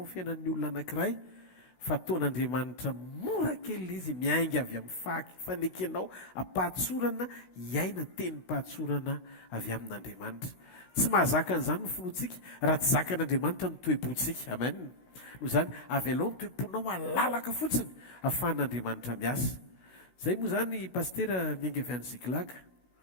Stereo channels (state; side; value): late; right; 16 ms